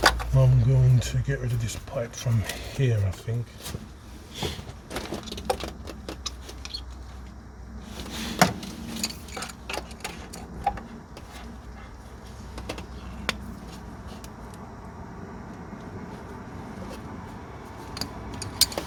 I'm going to get rid of this pipe from here, I think.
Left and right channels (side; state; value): both; identical; correlation 1.00